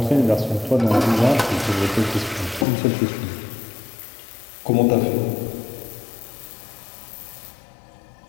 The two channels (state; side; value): drops out; right; at 2.7 s